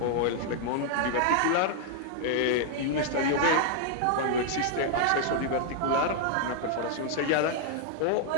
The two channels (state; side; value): different; both; correlation 0.00